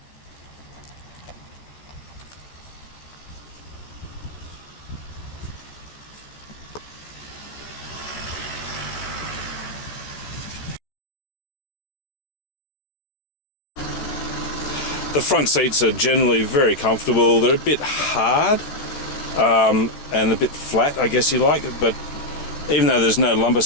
The front seats are generally very comfortable. They're a bit hard and a bit flat, I guess you like, but even though there's no lumbar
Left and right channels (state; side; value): late; right; 14 ms